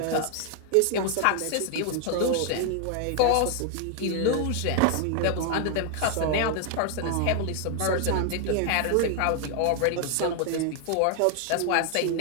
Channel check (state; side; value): different; both; correlation 0.00